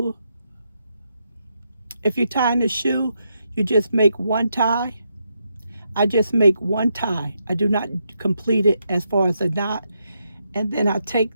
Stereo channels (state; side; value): inverted; both; correlation -0.81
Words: if you're tying a shoe, you just make one tie. I just make one tie. I do not complete it as far as a knot. And then I take